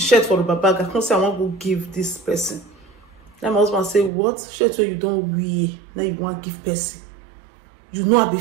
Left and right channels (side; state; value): left; drops out; at 4.1 s